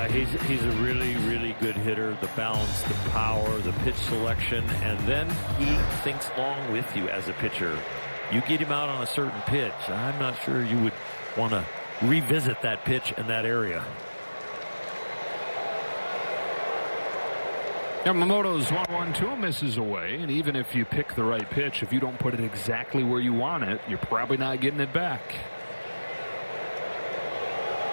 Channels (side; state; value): both; inverted; correlation -1.00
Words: he's a really, really good hitter. The balance, the power, the pitch selection, and then he thinks long with you as a pitcher. You get him out on a certain pitch, I'm not sure you would want to revisit that pitch in that area. Yamamoto's 1-1-2 misses away, and even if you pick the right pitch, if you don't put it exactly where you want it, you're probably not getting it back.